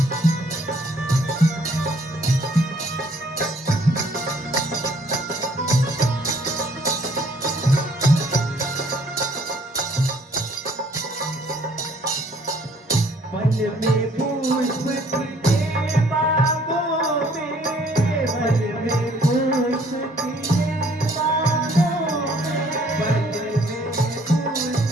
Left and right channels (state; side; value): normal; both; correlation 0.61